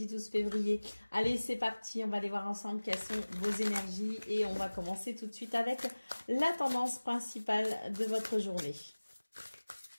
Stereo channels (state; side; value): inverted; both; correlation -1.00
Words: 12 février. Allez, c'est parti, on va aller voir ensemble quelles sont vos énergies et on va commencer tout de suite avec la tendance principale de votre journée.